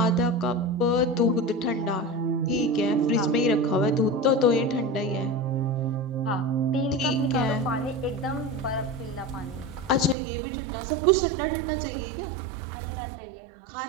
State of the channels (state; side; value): drops out; left; at 10.2 s